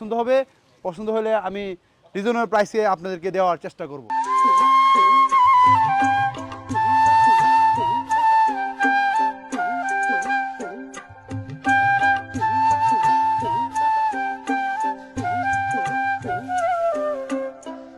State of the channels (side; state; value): both; identical; correlation 1.00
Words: হবে। পছন্দ হলে আমি রিজনেবল প্রাইসে আপনাদেরকে দেওয়ার চেষ্টা করব।